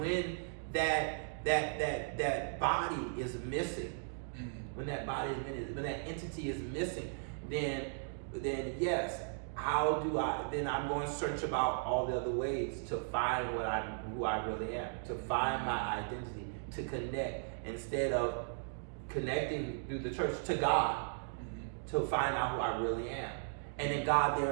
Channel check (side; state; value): left; silent; digital silence